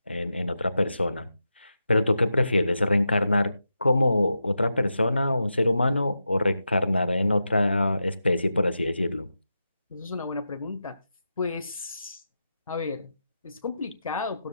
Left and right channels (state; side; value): inverted; both; correlation -0.89